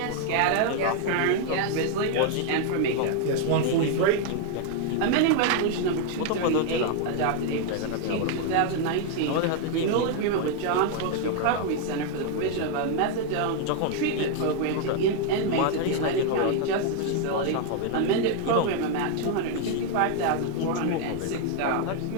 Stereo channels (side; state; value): both; different; correlation 0.00